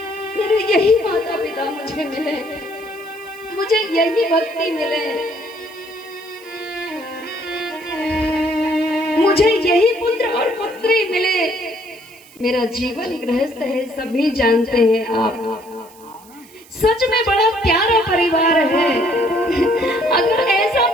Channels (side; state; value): right; noise; hiss, 24 dB below the sound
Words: मेरे यही माता पिता मुझे मिले, मुझे यही भक्ति मिले, मुझे यही पुत्र और पुत्री मिले। मेरा जीवन गृहस्थ है, सभी जानते हैं आप। सच में बड़ा प्यारा परिवार है। अगर ऐसा